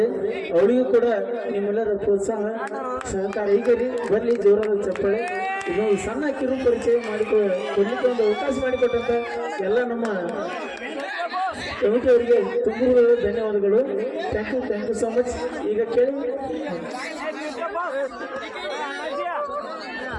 ಅವಳಿಗೂ ಕೂಡ ನಿಮ್ಮೆಲ್ಲರ ಪ್ರೋತ್ಸಾಹ ಸಹಕಾರ ಈಗ ಬರ್ಲಿ ಜೋರಾದ ಚಪ್ಪಾಳೆ. ಇದೊಂದು ಸಣ್ಣ ಕಿರು ಪರಿಚಯ ಕೊಡ್ಲಿಕ್ಕೆ ಒಂದು ಅವಕಾಶ ಮಾಡಿಕೊಟ್ಟಂತ ಎಲ್ಲ ನಮ್ಮ ಕಮಿಟಿ ಅವರಿಗೆ ತುಂಬ ಧನ್ಯವಾದಗಳು. Thank you so much. ಈಗ ಕೇಳಿ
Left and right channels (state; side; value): identical; both; correlation 1.00